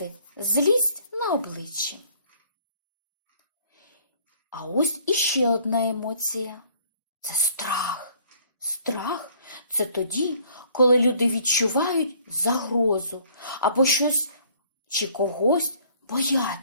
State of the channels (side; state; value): both; inverted; correlation -0.58